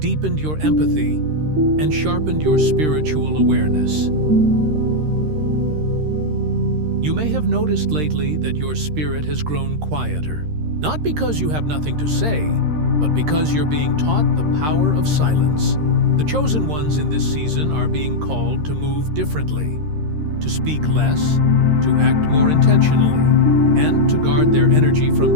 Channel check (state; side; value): late; left; 13 ms